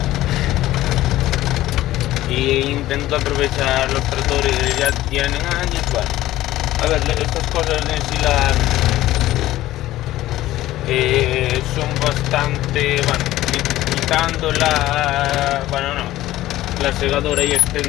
Y intento aprovechar los tractores que ya tienen años. Bueno, a ver, estas cosas de ensilar son bastante, bueno, quitando la segadora y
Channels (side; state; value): right; quieter; 15.4 dB